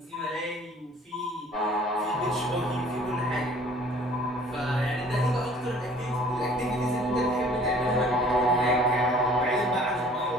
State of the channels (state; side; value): normal; both; correlation 0.52